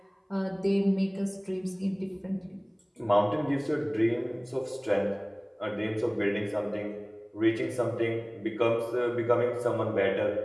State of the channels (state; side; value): identical; both; correlation 1.00